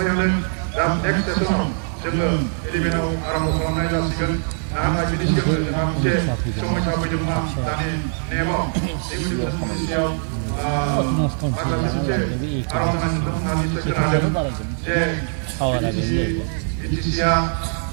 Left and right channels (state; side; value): silent; left; 56 dB below the other